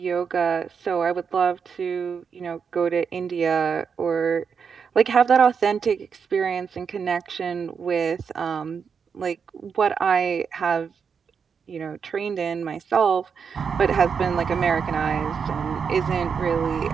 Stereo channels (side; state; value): left; quieter; 6.3 dB